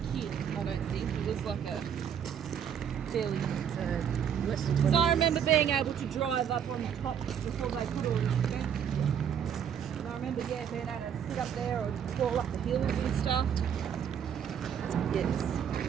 kid, I don't think. It was like a fairly... Because I remember being able to drive up on the top before they put all this fence. And I remember, yeah, being able to sit up there or crawl up the hills and stuff. Yes,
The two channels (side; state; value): left; quieter; 8.3 dB